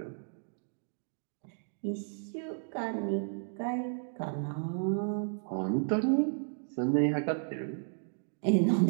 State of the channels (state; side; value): silent; left; digital silence